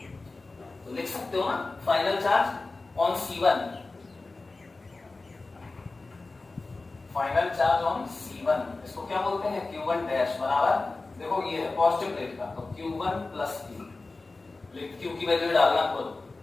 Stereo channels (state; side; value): quieter; right; 3.5 dB